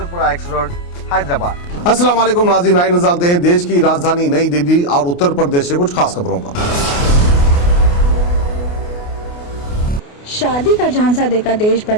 x road, Hyderabad. अस्सलाम वालेकुम नाज़रीन, आइए नज़र डालते हैं देश की राजधानी नई दिल्ली और उत्तर प्रदेश से कुछ खास खबरों पर। शादी का झांसा देकर देश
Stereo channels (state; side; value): late; right; 28 ms